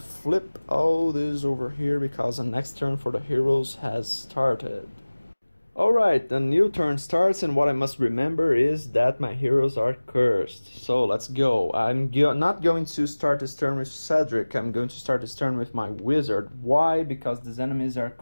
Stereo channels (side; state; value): both; inverted; correlation -1.00